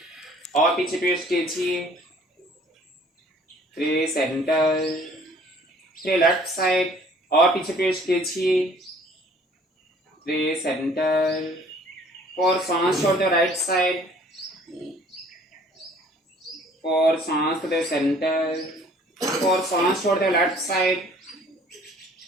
और पीछे ट्विस्ट कीजिए। 3 सेंटर, 3 लेफ्ट साइड, और पीछे ट्विस्ट कीजिए। 3 सेंटर, 4 सांस छोड़ते हो राइट साइड, 4 सांस दे सेंटर, 4 सांस छोड़ते हो लेफ्ट साइड,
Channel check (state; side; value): normal; both; correlation 0.55